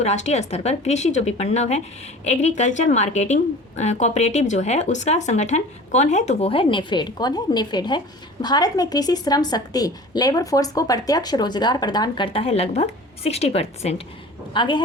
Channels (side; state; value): both; normal; correlation 0.41